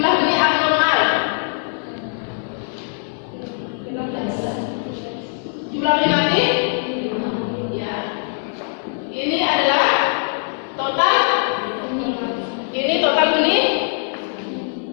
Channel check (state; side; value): silent; right; 62 dB below the other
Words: benih abnormal. Jumlah benih mati? Ya. Ini adalah total. Ini total benih